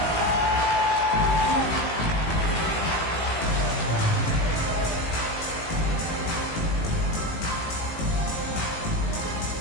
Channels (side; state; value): right; late; 18 ms